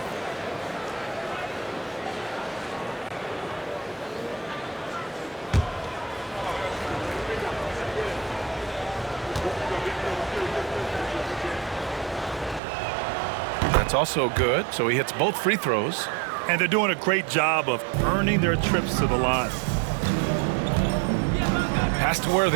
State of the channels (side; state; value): left; drops out; at 12.6 s